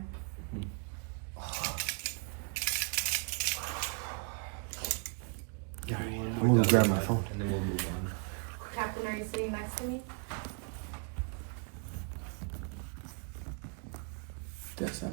I'm gonna grab my phone. And then we'll move on. Captain, are you sitting next to me? That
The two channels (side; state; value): left; quieter; 38.4 dB